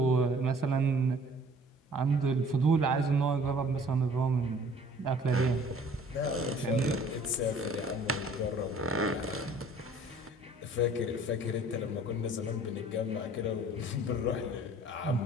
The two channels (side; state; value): both; normal; correlation 0.53